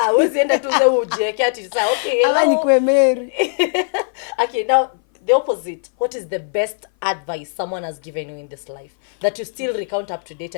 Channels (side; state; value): right; silent; 59 dB below the other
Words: wezi enda tu za ujeke ati sasa okay. Ala nikwe Mary. Okay, now the opposite. What is the best advice someone has given you in this life that you still recount up to date